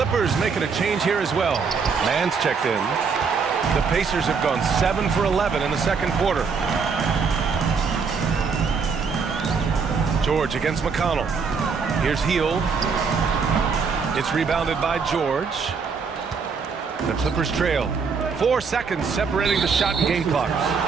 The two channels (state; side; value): quieter; left; 5.4 dB